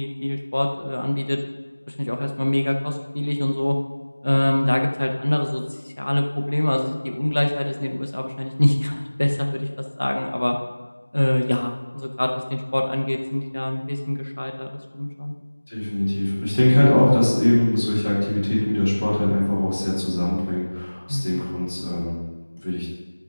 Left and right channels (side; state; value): both; inverted; correlation -1.00